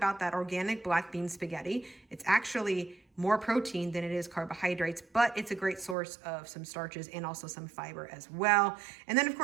that organic black bean spaghetti, it's actually more protein than it is carbohydrates, but it's a great source of some starches and also some fiber as well. And then of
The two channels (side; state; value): left; drops out; at 6.0 s